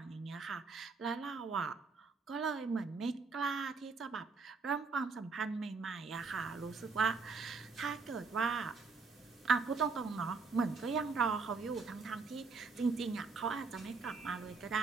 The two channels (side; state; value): left; quieter; 4.5 dB